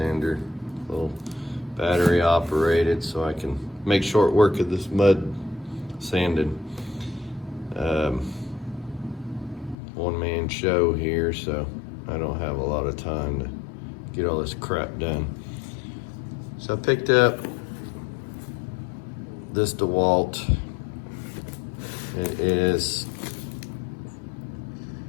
a little battery operated, so I can make short work of this mud sanding. One man show here, so I don't have a lot of time to get all this crap done. So I picked up this Dewalt. It is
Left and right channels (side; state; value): right; drops out; at 9.8 s